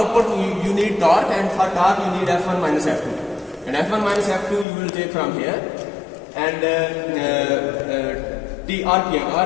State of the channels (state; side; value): drops out; right; at 4.7 s